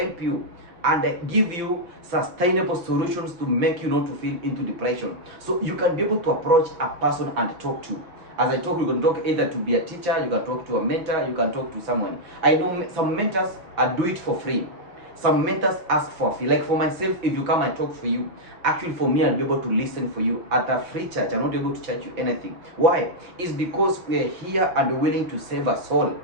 you and give you sustainable solutions to make you not to feel into depression. So you can be able to approach a person and talk to. As I talk, you can talk either to be a teacher, you can talk to a mentor, you can talk to someone. I know some mentors do it for free. Some mentors ask for a fee. Like for myself, if you come and talk for you, actually for me, I'll be able to listen for you at a free charge. I'm not able to charge you anything. Why? It's because we're here and willing to save a soul.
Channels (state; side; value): late; left; 5.7 ms